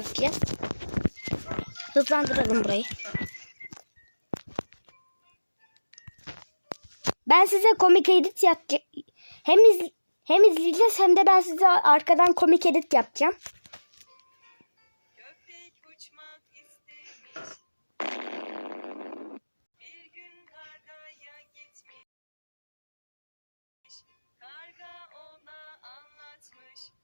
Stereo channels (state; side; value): inverted; both; correlation -1.00